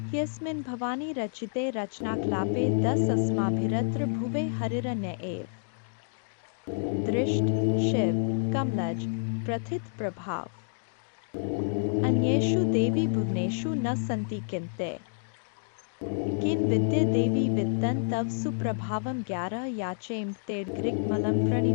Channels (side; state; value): right; silent; digital silence